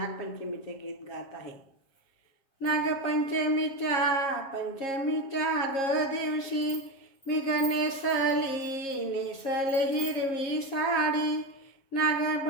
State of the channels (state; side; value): late; right; 7.4 ms